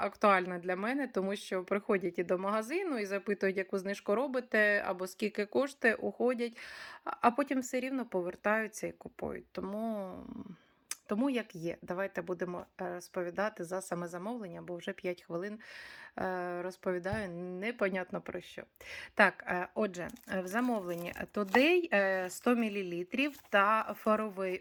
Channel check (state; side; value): identical; both; correlation 1.00